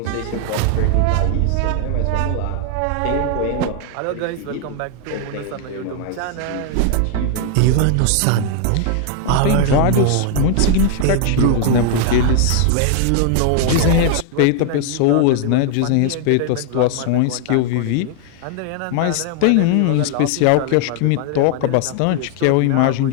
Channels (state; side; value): different; both; correlation 0.00